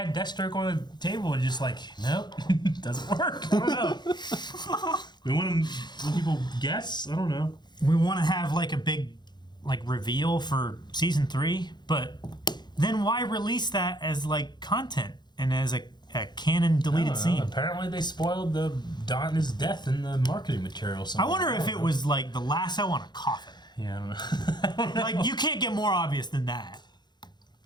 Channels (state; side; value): late; right; 0.21 ms